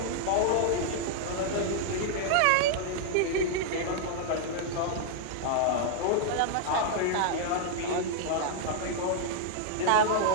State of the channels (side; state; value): both; different; correlation -0.01